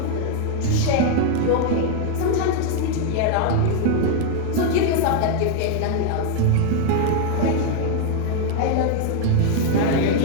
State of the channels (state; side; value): different; both; correlation 0.00